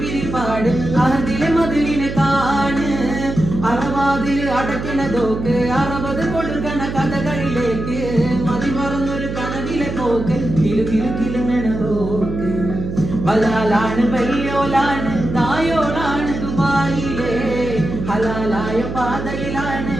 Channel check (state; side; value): noise; right; hum, 6 dB below the sound